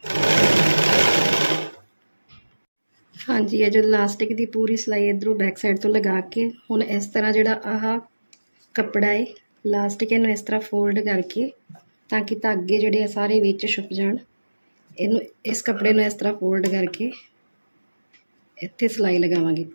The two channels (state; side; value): inverted; both; correlation -1.00